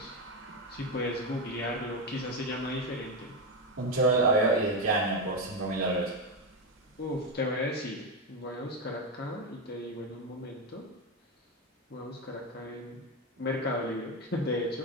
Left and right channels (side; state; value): both; normal; correlation 0.11